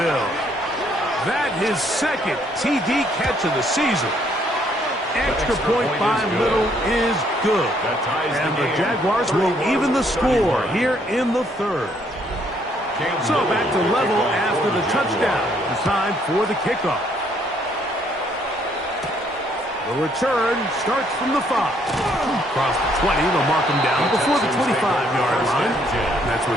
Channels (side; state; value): both; normal; correlation 0.68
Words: That his second TD catch of the season. Extra point by Little is good. And the Jaguars will even the score here in the third. So back to level after the touchdown. It's time for the kickoff. The return starts from the 5. Across the 20, they'll mark him down before the 25-yard line. And that's where